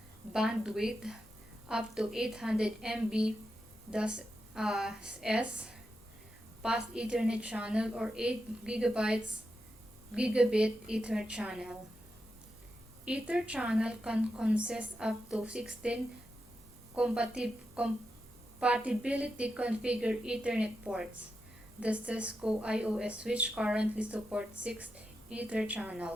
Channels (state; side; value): normal; both; correlation 0.87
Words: bandwidth up to 800 Mbps, fast Ethernet channel or 8 gigabit Ether channel. Ether channel can consist up to 16 compatibility configured Ethernet ports. The Cisco IOS switch currently supports 6 Ether